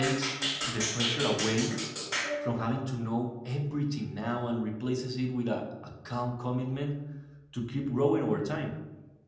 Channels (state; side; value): identical; both; correlation 1.00